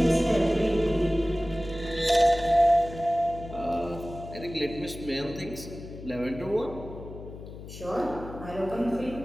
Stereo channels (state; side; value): noise; left; hum, 13 dB below the sound